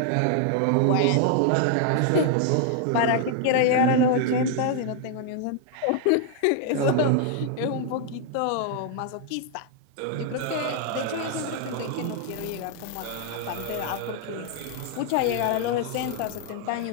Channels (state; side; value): different; both; correlation 0.00